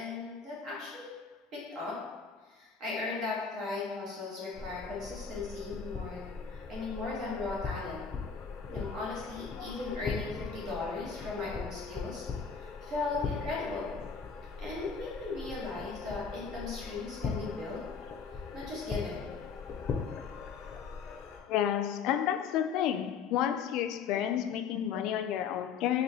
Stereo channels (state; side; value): quieter; right; 6.0 dB